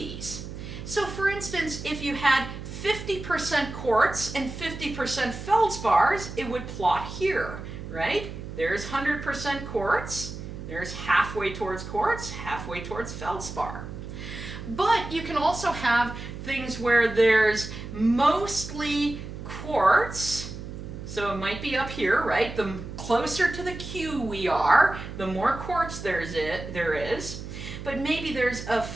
So for instance, if you had 50% quartz and 50% feldspars, it would plot here, right? There's 100% quartz. There's halfway towards quartz, halfway towards feldspar. But you can also have things where there's mostly quartz, so it might be up here, right? The closer to the Q we are, the more quartz there is. But maybe there's a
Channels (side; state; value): right; noise; hum, 10 dB below the sound